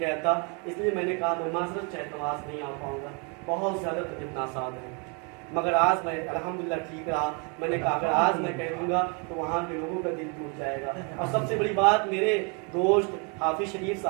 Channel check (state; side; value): quieter; left; 34.4 dB